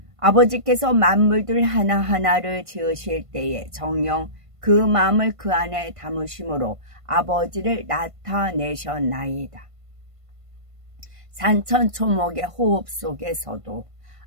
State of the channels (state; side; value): late; left; 1.5 ms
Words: 아버지께서 만물들 하나하나를 지으실 때에 정녕 그 마음을 그 안에 담으심으로 아버지를 나타내셨나이다. 산천초목의 호흡 속에서도